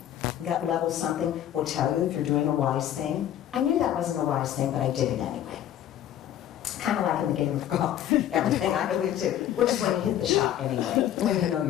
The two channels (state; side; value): quieter; right; 11.4 dB